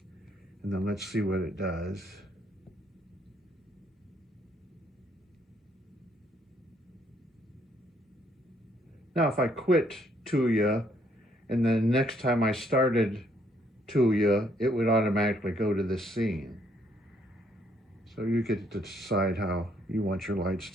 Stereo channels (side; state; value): both; normal; correlation 0.69